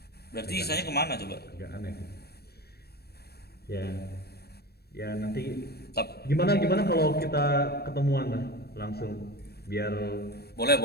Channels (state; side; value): late; right; 0.47 ms